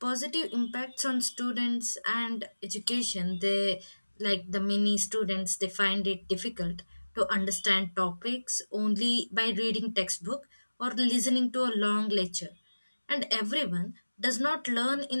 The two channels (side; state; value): both; inverted; correlation -1.00